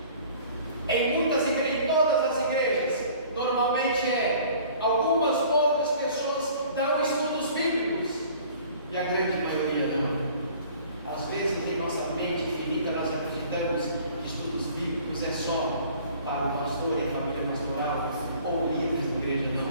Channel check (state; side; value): inverted; both; correlation -0.50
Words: Em muitas igrejas, em todas as igrejas, normalmente algumas poucas pessoas dão estudos bíblicos e a grande maioria não. Às vezes em nossa mente finita nós acreditamos que estudos bíblicos é só para o pastor e a família pastoral ou líderes da igreja.